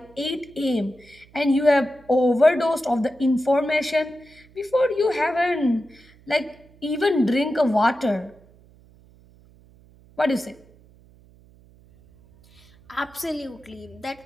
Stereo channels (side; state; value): right; noise; hum, 27 dB below the sound